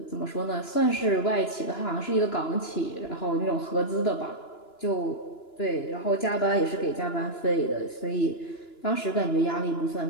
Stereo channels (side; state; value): right; late; 2.9 ms